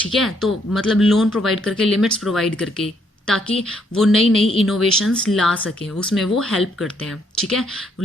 है, तो मतलब लोन प्रोवाइड करके, लिमिट्स प्रोवाइड करके, ताकि वो नई नई इनोवेशंस ला सकें, उसमें वो हेल्प करते हैं। ठीक है,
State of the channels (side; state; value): both; normal; correlation 0.71